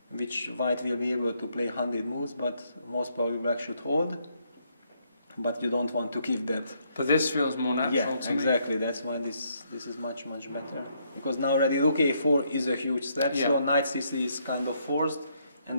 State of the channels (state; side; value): inverted; both; correlation -0.73